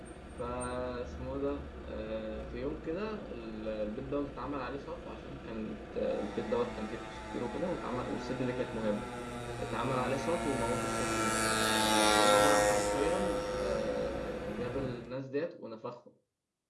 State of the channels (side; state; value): both; identical; correlation 1.00